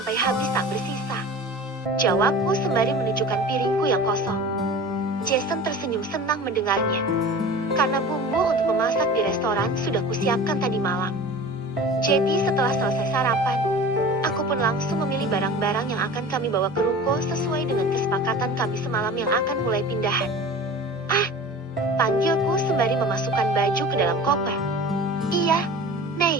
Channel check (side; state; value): both; normal; correlation 0.38